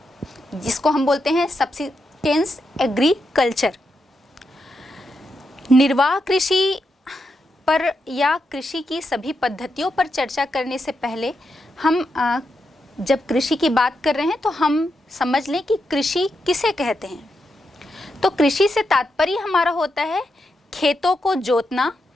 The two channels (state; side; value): normal; both; correlation 0.84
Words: जिसको हम बोलते हैं सब्सिस्टेंस एग्रीकल्चर। निर्वाह कृषि पर या कृषि की सभी पद्धतियों पर चर्चा करने से पहले हम जब कृषि की बात कर रहे हैं तो हम समझ लें कि कृषि किसे कहते हैं। तो कृषि से तात्पर्य हमारा होता है खेतों को जोतना,